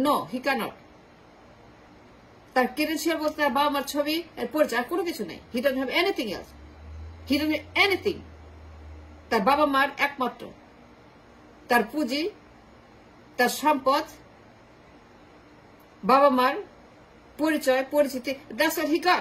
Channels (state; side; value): identical; both; correlation 1.00